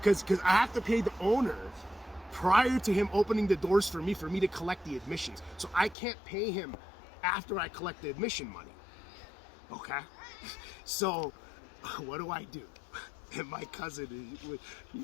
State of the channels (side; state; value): right; drops out; at 6.0 s